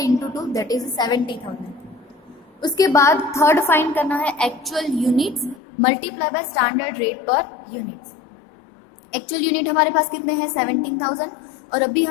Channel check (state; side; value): drops out; right; at 5.6 s